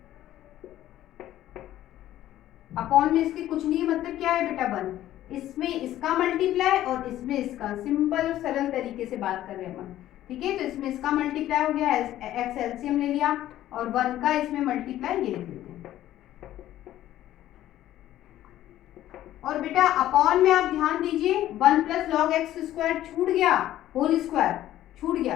अपॉन में इसके कुछ नहीं, मतलब क्या है बेटा? 1, इसमें इसका मल्टीप्लाई और इसमें इसका, सिंपल और सरल तरीके से बात कर रहे हैं हम। ठीक है, तो इसमें इसका मल्टीप्लाई हो गया, x एलसीएम ले लिया, और 1 का इसमें मल्टीप्लाई ये लिख लेते हैं। और बेटा अपॉन में आप ध्यान दीजिए, 1 प्लस लॉग एक्स स्क्वायर छूट गया, होल स्क्वायर छूट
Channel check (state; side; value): quieter; right; 13.4 dB